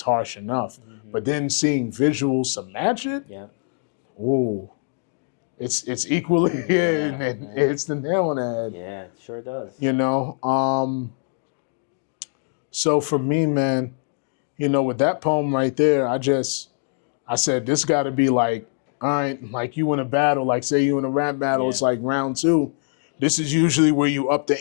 enough, but then seeing visuals to match it, Yeah. ooh, it's equally Yeah, and man. it's the nail on the head. Yeah, it sure does. So for me, man, with that poem right there, I said this got to be like, all right, like you in a battle, like say you in a rap battle, Yeah. it's like round 2. This is usually where you up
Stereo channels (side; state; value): right; silent; digital silence